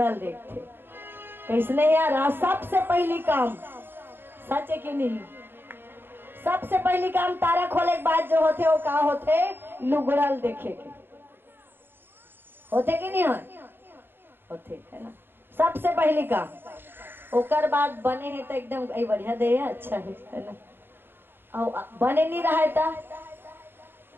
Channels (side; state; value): left; late; 0.10 ms